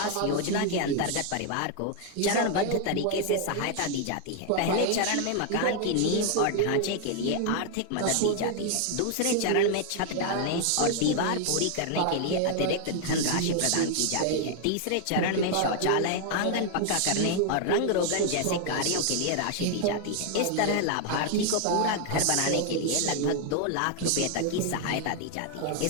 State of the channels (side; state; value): both; different; correlation 0.00